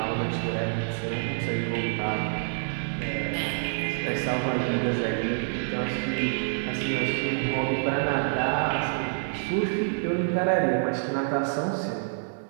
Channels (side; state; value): left; silent; digital silence